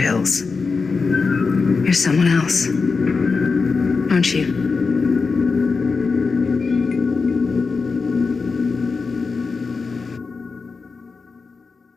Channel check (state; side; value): quieter; right; 4.6 dB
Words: You're someone else, aren't you?